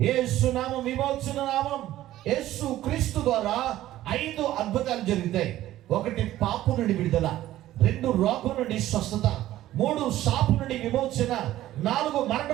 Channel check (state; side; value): quieter; left; 14.3 dB